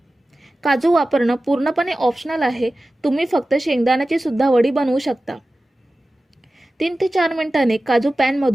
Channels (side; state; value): both; normal; correlation 0.95